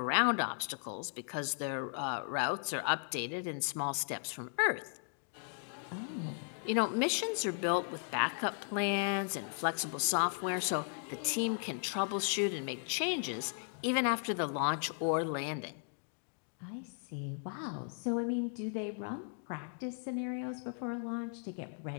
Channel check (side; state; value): right; silent; 54 dB below the other